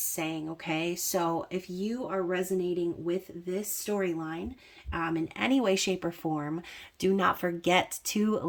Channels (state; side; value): identical; both; correlation 1.00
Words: okay? So if you are resonating with this storyline in any way, shape, or form, do not forget to